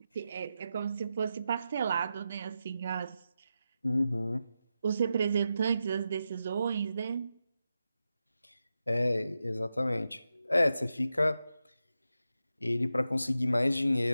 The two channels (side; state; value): both; inverted; correlation -0.89